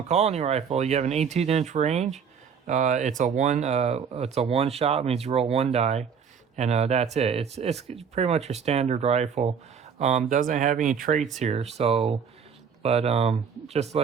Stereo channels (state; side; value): quieter; left; 6.8 dB